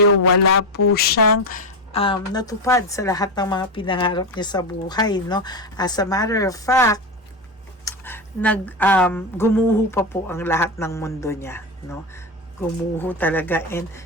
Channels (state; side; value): normal; both; correlation 0.15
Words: wala po siyang natupad sa lahat ng mga pinangarap niya sa buhay, no. As a matter of fact, gumuho pa po ang lahat ng mundo niya, no. Gumuho talaga, and